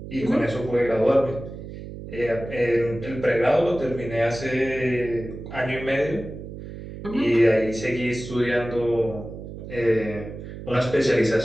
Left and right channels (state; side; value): noise; right; hum, 11 dB below the sound